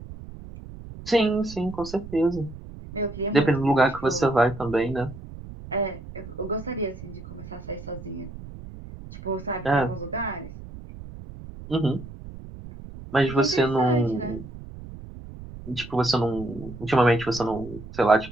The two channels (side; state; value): right; noise; rumble, 14 dB below the sound